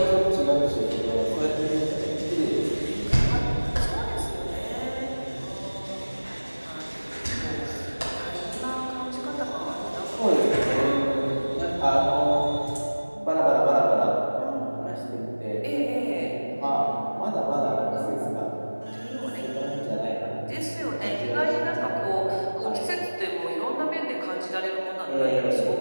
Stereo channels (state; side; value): inverted; both; correlation -1.00